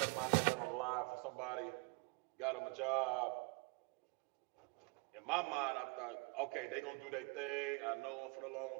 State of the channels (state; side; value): quieter; left; 30.5 dB